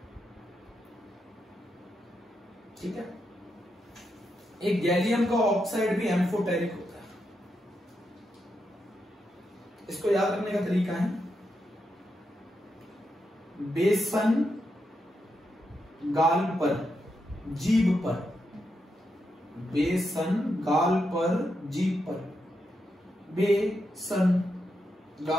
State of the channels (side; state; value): both; normal; correlation 0.84